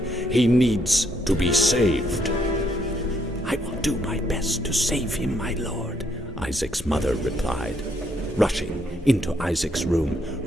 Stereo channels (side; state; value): both; normal; correlation 0.72